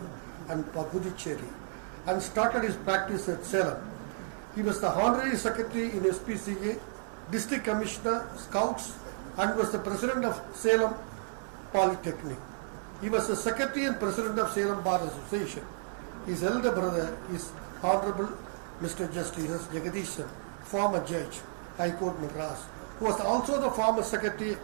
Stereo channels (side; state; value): left; silent; digital silence